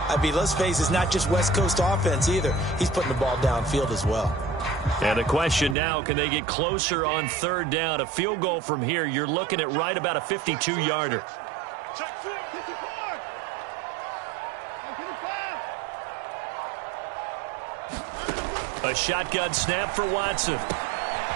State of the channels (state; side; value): drops out; left; at 5.8 s